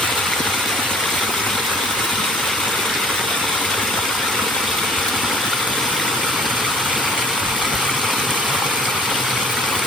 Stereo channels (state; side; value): normal; both; correlation 0.53